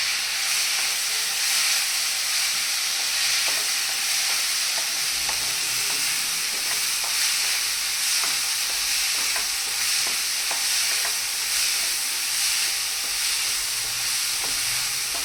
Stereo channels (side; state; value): both; identical; correlation 1.00